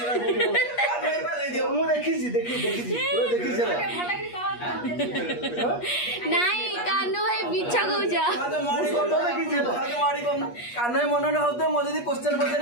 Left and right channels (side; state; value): right; late; 8.4 ms